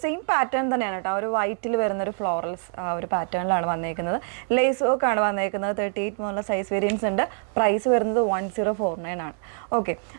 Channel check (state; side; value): silent; left; 57 dB below the other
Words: സെയിം പാറ്റേൺ തന്നെയാണ് കേട്ടോ. ആ ഒരു വൈറ്റിൽ വരുന്നൊരു ഫ്ലോറൽസ് ആ ഒരു പാറ്റേണിലാണ് വന്നേക്കുന്നത്. ലേസ് വർക്ക് ആണ് വന്നേക്കുന്നത്. 38 മുതലുള്ള സൈസ് വേരിയൻസ് ഉണ്ട്. പ്രൈസ് വരുന്നത് 1049 ആണ്. ഓക്കെ,